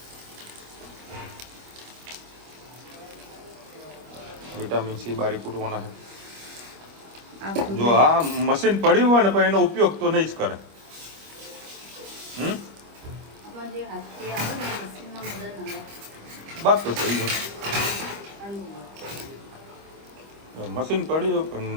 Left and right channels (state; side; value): late; left; 25 ms